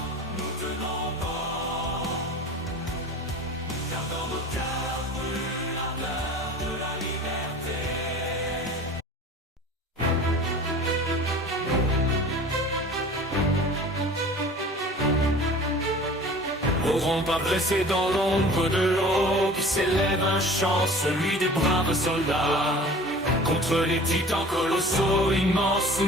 nous tenons bon, car dans nos cœurs brûle l'ardeur de la liberté. N'auront pas blessé dans l'ombre de l'eau qui s'élève un chant, celui des braves soldats. Contre les titans colossaux immenses,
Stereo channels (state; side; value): normal; both; correlation 0.42